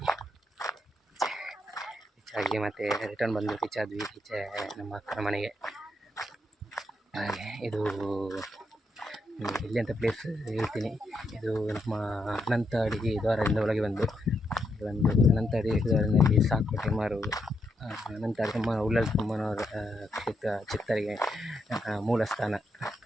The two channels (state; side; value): normal; both; correlation 0.80